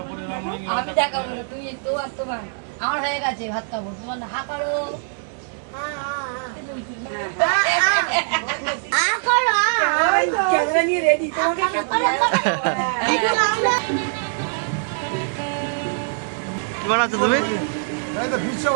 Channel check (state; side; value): silent; left; 63 dB below the other